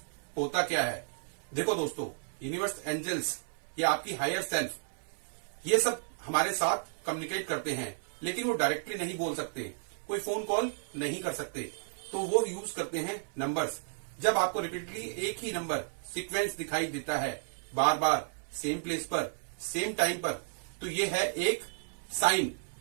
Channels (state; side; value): silent; left; 56 dB below the other